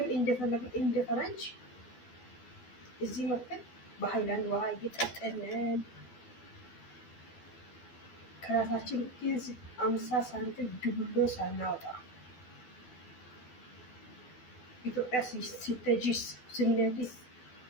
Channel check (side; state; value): right; late; 12 ms